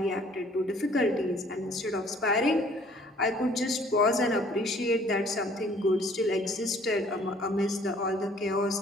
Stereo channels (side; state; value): both; normal; correlation 0.57